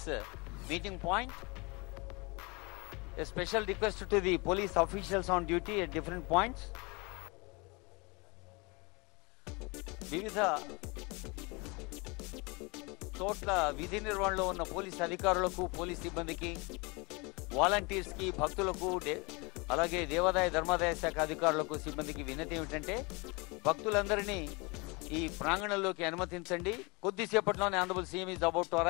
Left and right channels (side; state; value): right; quieter; 28.0 dB